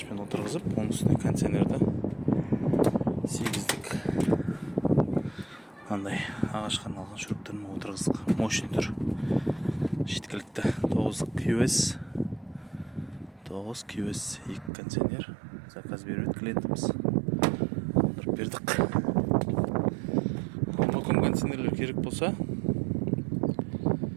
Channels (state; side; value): drops out; left; at 14.7 s